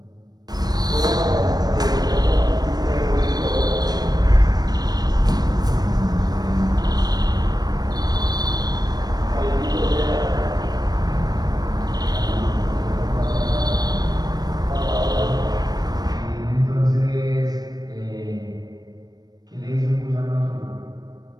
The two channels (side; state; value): left; late; 0.19 ms